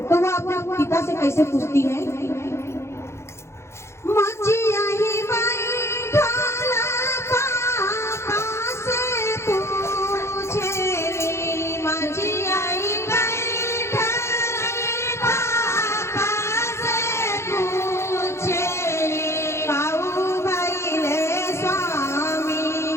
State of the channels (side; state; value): right; late; 0.13 ms